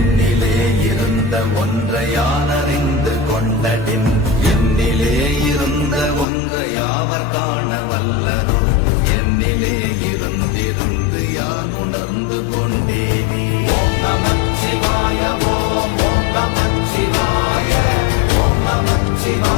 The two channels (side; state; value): right; drops out; at 6.2 s